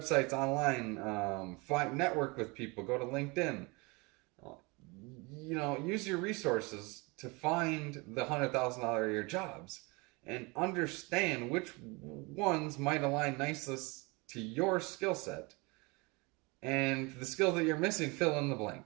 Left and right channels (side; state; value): left; quieter; 27.1 dB